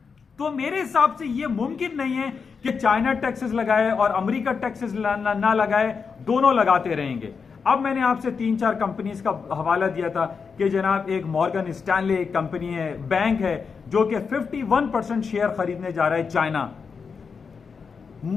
तो मेरे हिसाब से यह मुमकिन नहीं है कि चाइना टैक्सेस लगाए और अमेरिका टैक्सेस ना लगाए, दोनों लगाते रहेंगे। अब मैंने आपसे 3-4 कंपनीज का हवाला दिया था कि जनाब एक मॉर्गन स्टैनले एक कंपनी है, बैंक है, जो कि 51% शेयर खरीदने जा रहा है चाइना।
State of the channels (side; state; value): right; quieter; 5.6 dB